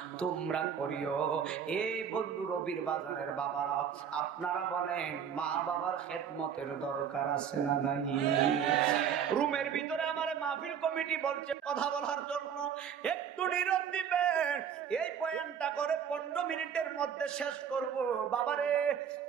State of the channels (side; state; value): left; quieter; 8.0 dB